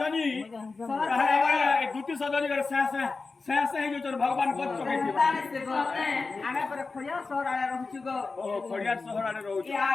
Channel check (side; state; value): right; quieter; 4.1 dB